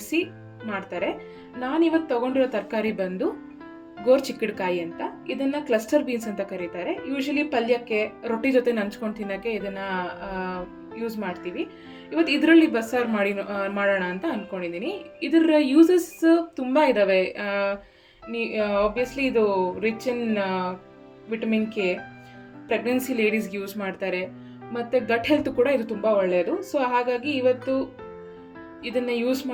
ಮಾಡ್ತಾರೆ. ನಾನಿವತ್ತು ತೊಗೊಂಡಿರೋ ತರಕಾರಿ ಬಂದು ಗೋರ್ಚಿಕ್ಕಡ್ಕಾಯಿ ಅಂತ. ಇದನ್ನು ಕ್ಲಸ್ಟರ್ ಬೀನ್ಸ್ ಅಂತ ಕರೀತಾರೆ. ಯೂಶಲಿ ಪಲ್ಯಕ್ಕೆ ರೊಟ್ಟಿ ಜೊತೆ ನಂಚ್ಕೊಂಡು ತಿನ್ನೋಕ್ಕೆ ಇದನ್ನು ಯೂಸ್ ಮಾಡ್ತೀವಿ. ಇವತ್ತು ಇದರಲ್ಲಿ ಬಸ್ಸಾರು ಮಾಡೋಣ ಅಂತ ಅಂದ್ಕೊಂಡಿದ್ದೀನಿ. ಇದರ ಯೂಸಸ್ ತುಂಬ ಇದ್ದಾವೆ. ಆಬ್ವಿಯಸ್ಲಿ ಇದು rich in vitamin K, pregnancy ಲೇಡೀಸ್ಗೆ ಯೂಸ್ ಮಾಡ್ತಾರೆ, ಮತ್ತು ಗಟ್ ಹೆಲ್ತ್ ಕೂಡ ಇದು ತುಂಬ ಒಳ್ಳೆಯದು. ಸೊ ಹಾಗಾಗಿ ಇವತ್ತು ಇದನ್ನು ಯೂಸ್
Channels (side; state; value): both; identical; correlation 1.00